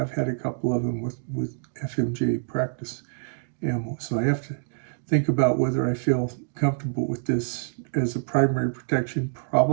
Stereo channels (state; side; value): silent; left; digital silence